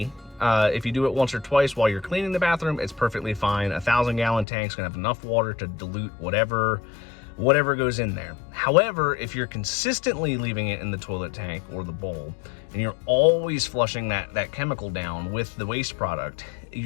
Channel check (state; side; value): drops out; right; at 4.5 s